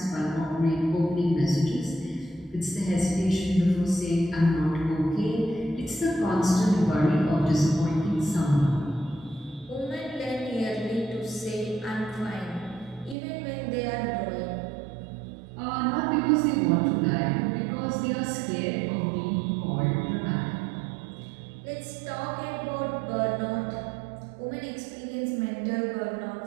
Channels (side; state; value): left; drops out; at 13.2 s